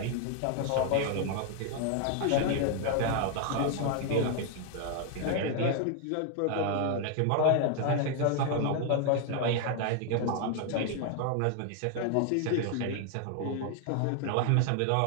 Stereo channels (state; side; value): different; both; correlation 0.00